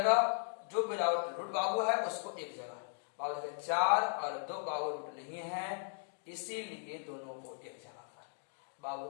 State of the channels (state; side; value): silent; right; digital silence